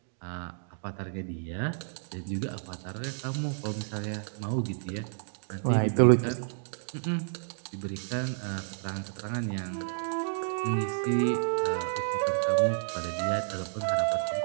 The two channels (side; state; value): left; silent; digital silence